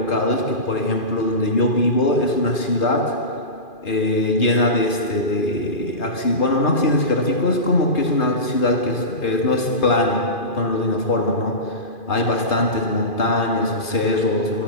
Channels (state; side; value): late; right; 2.4 ms